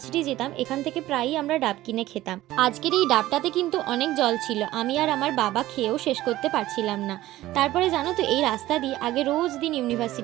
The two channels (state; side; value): quieter; left; 15.8 dB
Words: যেতাম এখান থেকে প্রায়ই আমরা ডাব কিনে খেতাম। আজকের এই ডাবটাতে কিন্তু অনেক জল ছিল, আমি আর আমার বাবা খেয়েও শেষ করতে পারছিলাম না। তারপরে জানো তো, এই রাস্তা দিয়ে আগে রোজ দিন